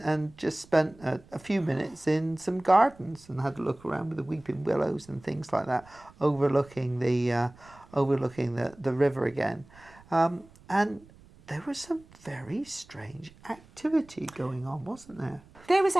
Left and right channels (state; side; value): noise; right; rumble, 25 dB below the sound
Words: just spent a few minutes in some gardens and had a look around with the weeping willows and things like that, overlooking the river again. And there was some very strange activity going on, wasn't there? There was